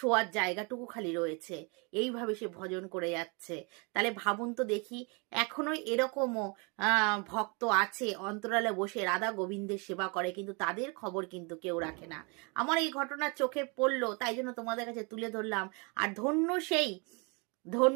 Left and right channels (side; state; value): left; quieter; 31.8 dB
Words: জায়গাটুকু খালি রয়েছে। এইভাবে সে ভজন করে যাচ্ছে। তাহলে ভাবুন তো দেখি, এখনো এরকমও ভক্ত আছে অন্তরালে বসে রাধা গোবিন্দের সেবা করে, কিন্তু তাদের খবর কিন্তু কেউ রাখে না। আমার এই ঘটনা চোখে পড়লো, তাই জন্য তোমাদের কাছে তুলে ধরলাম। আর ধন্য